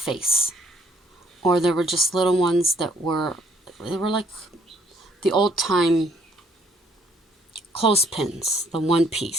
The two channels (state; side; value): normal; both; correlation 0.65